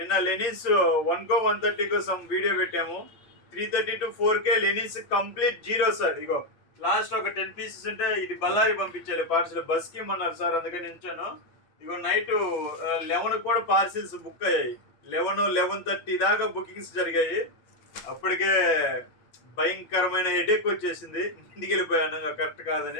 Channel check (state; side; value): late; right; 8.3 ms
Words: లెనిన్స్ 1 130 కోసం వీడియో పెట్టాము. 330 to 4K linens complete zero sir. Ego last ఒక 10 పీసెస్ ఉంటే ఇది బళ్ళారి పంపించాలి పార్సల్, బస్కి ఇమ్మన్నారు సార్, అందుకని ఉంచాను. ఇగో నైట్ 11 కూడా పార్సిల్స్ బుక్ అయ్యాయి. 11-11:30 దాకా బుకింగ్స్ జరిగాయి. అప్పటికే భయంకరమైన హెడేక్ వచ్చేసింది, ఇంటికి వెళ్ళిపోయాను కరెక్ట్